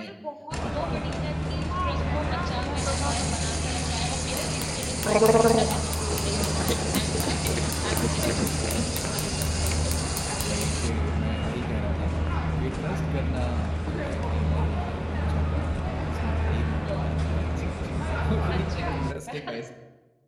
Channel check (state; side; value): identical; both; correlation 1.00